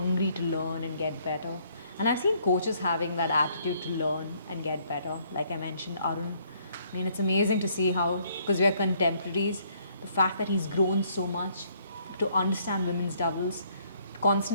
to learn and get better. And I've seen coaches having that attitude to learn and get better. Like I mentioned, Arun. I mean, it's amazing to see how, because we are contemporaries, the fact that he's grown so much to understand women's doubles,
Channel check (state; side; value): inverted; both; correlation -0.67